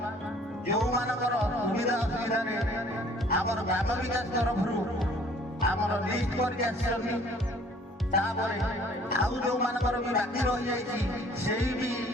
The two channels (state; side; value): normal; both; correlation 0.55